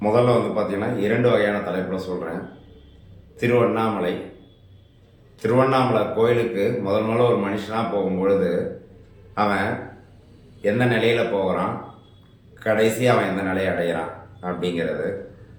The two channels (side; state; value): both; identical; correlation 1.00